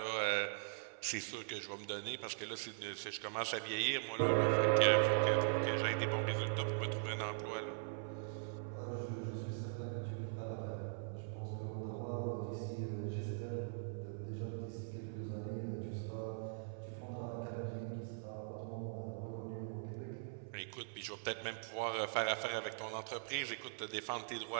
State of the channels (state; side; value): silent; left; 50 dB below the other